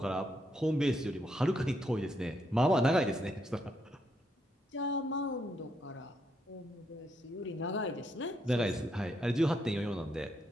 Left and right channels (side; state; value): both; normal; correlation 0.77